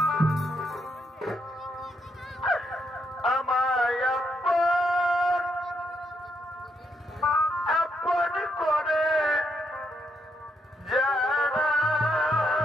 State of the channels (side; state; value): both; normal; correlation 0.78